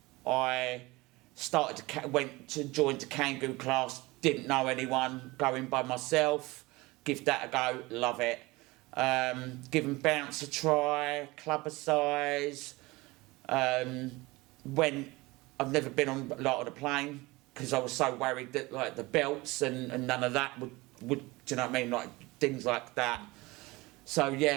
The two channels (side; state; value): left; quieter; 22.0 dB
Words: I went to join the Kangoo class, didn't know anyone, going by myself. Give that a go, love it. Giving bounce a try, clubber size. When I've never been on a plane, because I was so worried that like the belts and none of that would do you know what I mean, like things like that. So